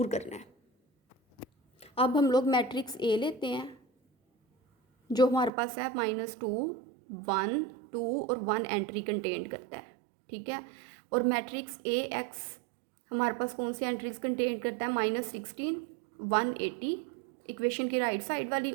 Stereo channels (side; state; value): left; drops out; at 5.5 s